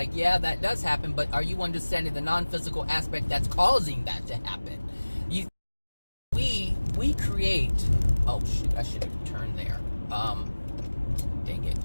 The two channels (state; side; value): inverted; both; correlation -1.00